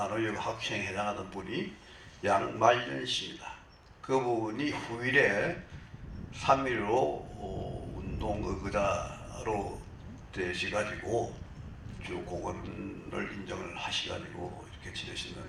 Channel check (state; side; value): identical; both; correlation 1.00